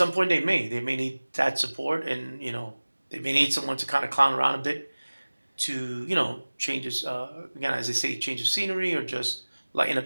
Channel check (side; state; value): both; inverted; correlation -1.00